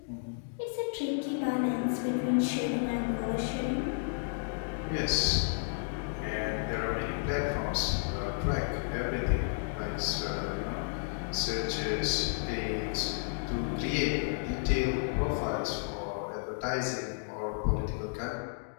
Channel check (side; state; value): right; silent; digital silence